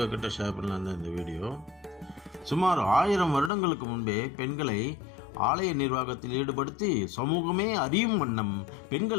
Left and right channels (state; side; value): drops out; right; at 3.5 s